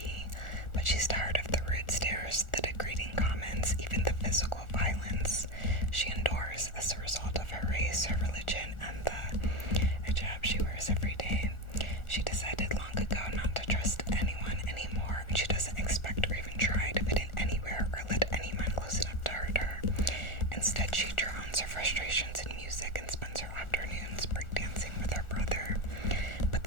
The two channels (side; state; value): right; late; 1.4 ms